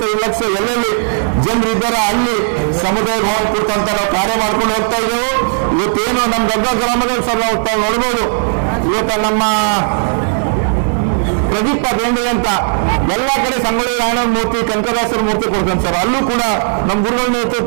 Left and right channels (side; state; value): left; silent; digital silence